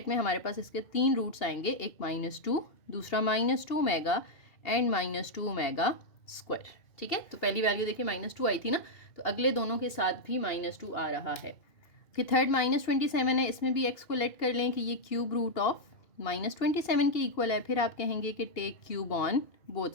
में हमारे पास इसके 3 रूट्स आएंगे, एक -2, दूसरा -2 ओमेगा एंड -2 ओमेगा स्क्वायर, ठीक है। तो पहली वैल्यू देखिए -2 आई थी ना, तो अगले दोनों के साथ भी -2 आ रहा है। फिर थर्ड -27 है, इसमें भी x को लेट कर लें कि ये क्यूब रूट ऑफ -27 के इक्वल है, फिर आप कहेंगे कि take cube on both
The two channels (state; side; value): late; right; 2.8 ms